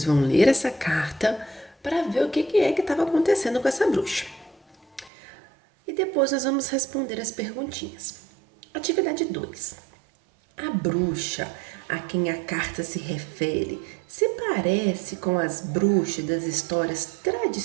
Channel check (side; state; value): left; drops out; at 5.1 s